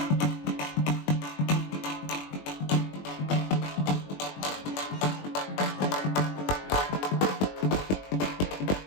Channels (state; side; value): late; right; 21 ms